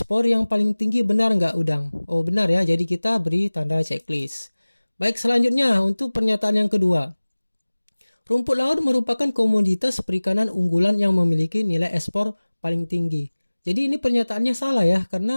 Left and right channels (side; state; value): both; inverted; correlation -1.00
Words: yang paling tinggi, benar nggak udang? Oh, benar ya. Jadi kita beri tanda checklist. Baik, selanjutnya untuk pernyataan yang kedua. Rumput laut merupakan komoditas perikanan unggulan yang memiliki nilai ekspor paling tinggi. Jadi ini pernyataannya salah ya,